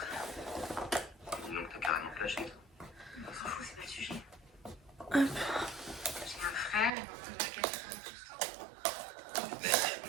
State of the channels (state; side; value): drops out; left; at 6.9 s